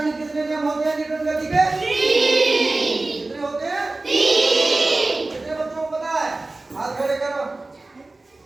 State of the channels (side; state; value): left; quieter; 3.1 dB